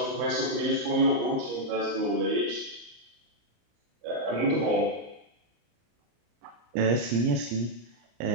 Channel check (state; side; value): late; left; 34 ms